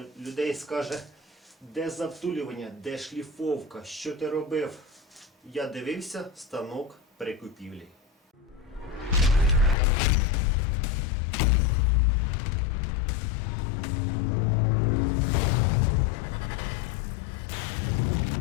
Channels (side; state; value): right; drops out; at 9.8 s